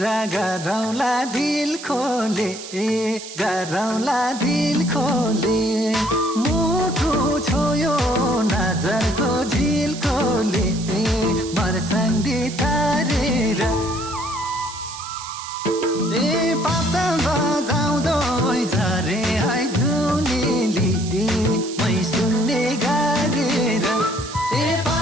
गरौँला दिल खोले गरौँला दिल खोले मुटु छोयो नजरको झिल खोले मर्सँदी तारेर पाता बजाउँदो झरे है धुनेली मै सुन्ने गारेर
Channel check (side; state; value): right; noise; hiss, 12 dB below the sound